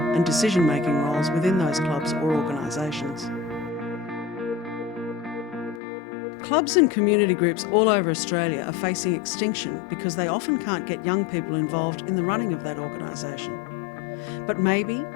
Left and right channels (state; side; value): drops out; right; at 5.8 s